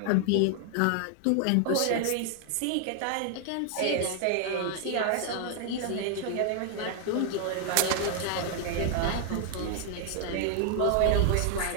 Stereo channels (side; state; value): both; different; correlation 0.00